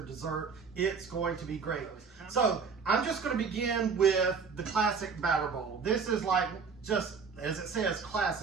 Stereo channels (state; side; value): quieter; left; 5.5 dB